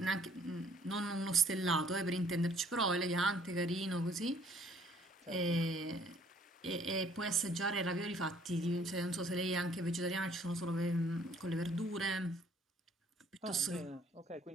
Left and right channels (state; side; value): normal; both; correlation 0.60